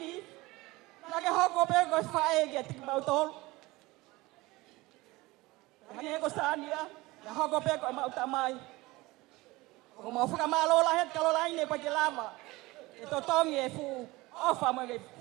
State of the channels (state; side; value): quieter; left; 21.0 dB